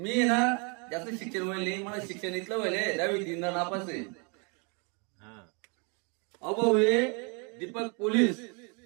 ना जास्त शिक्षण व्हायले, मला शिक्षण इथलं व्हायले 10वी 3दा नापास आहे. अभाऊ हे दीपक पोलीस,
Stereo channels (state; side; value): quieter; left; 34.3 dB